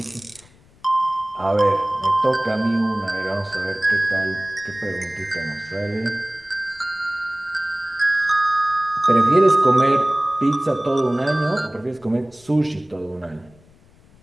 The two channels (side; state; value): left; noise; rumble, 28 dB below the sound